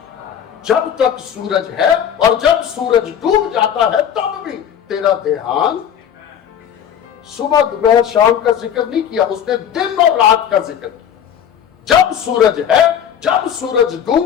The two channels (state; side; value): quieter; right; 8.9 dB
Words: جب تک سورج ہے، اور جب سورج ڈوب جاتا ہے تب بھی تیرا دھیان۔ صبح دوپہر شام کا ذکر نہیں کیا، اس نے دن اور رات کا ذکر کیا۔ جب سورج ہے، جب سورج ڈوب